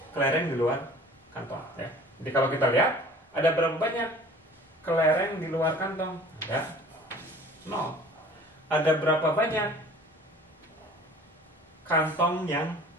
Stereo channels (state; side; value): normal; both; correlation 0.47